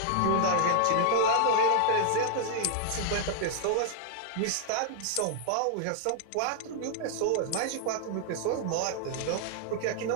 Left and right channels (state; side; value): different; both; correlation -0.01